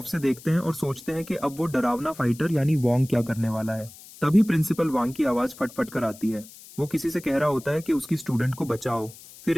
से देखते हैं और सोचते हैं कि अब वो डरावना फाइटर यानी वॉन्ग क्या करने वाला है। तभी प्रिंसिपल वांग की आवाज फटफट कर आती है। वो किसी से कह रहा होता है कि उसकी स्टूडेंट को बचाओ। फिर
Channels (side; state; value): left; noise; hiss, 19 dB below the sound